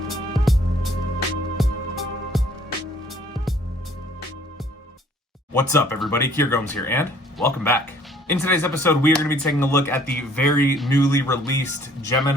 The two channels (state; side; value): normal; both; correlation 0.58